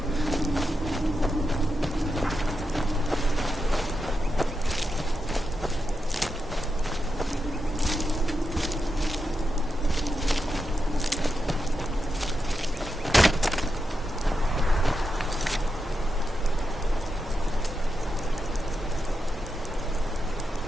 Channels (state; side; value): normal; both; correlation 0.87